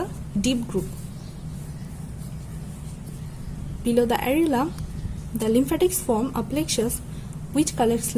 deep group. Below the areola, the lymphatics form a plexus which collects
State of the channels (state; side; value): identical; both; correlation 1.00